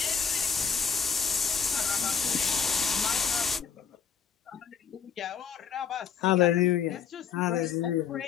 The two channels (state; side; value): quieter; right; 7.0 dB